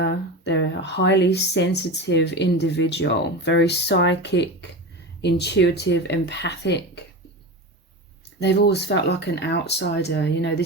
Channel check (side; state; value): both; normal; correlation 0.25